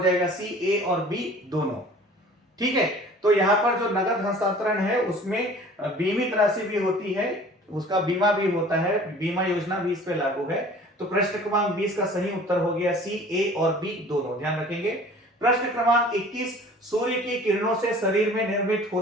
सी, ए और बी दोनों, ठीक है। तो यहां पर जो नगद हस्तांतरण है उसमें बीमित राशि भी होती है, उसका बीमा भी होता है, बीमा योजना भी इस पे लागू है। तो प्रश्न क्रमांक 20 का सही उत्तर हो गया सी, ए और बी दोनों, ध्यान रखेंगे। प्रश्न क्रमांक 21, सूर्य की किरणों से शरीर में निर्मित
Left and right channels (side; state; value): both; normal; correlation 0.47